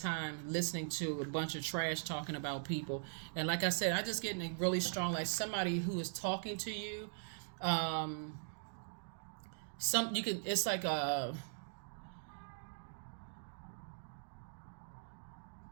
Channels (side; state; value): left; silent; digital silence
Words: listening to a bunch of trash talking about people. And like I said, I just getting really strong, like somebody who is talking to you. It's like